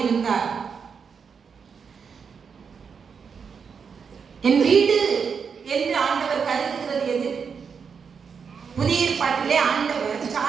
இருந்தான். என் வீடு என்று ஆண்டவர் கருதுகிறது எது? புதிய ஏற்பாட்டிலே ஆண்டவர்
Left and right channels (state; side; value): quieter; left; 6.2 dB